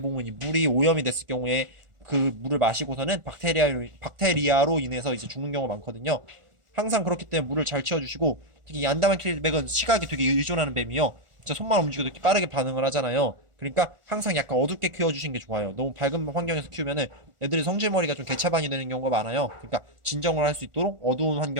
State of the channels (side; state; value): left; late; 1.4 ms